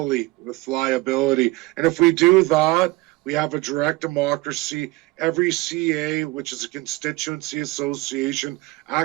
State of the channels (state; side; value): quieter; left; 21.0 dB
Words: with liability. And if we do that, we have a direct democracy. Every CA, which is a constituency association,